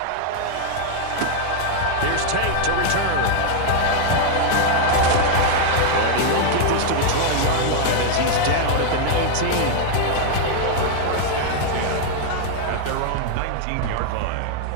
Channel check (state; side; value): different; both; correlation 0.00